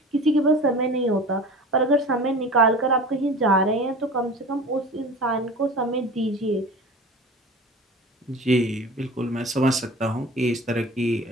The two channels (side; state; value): both; normal; correlation 0.37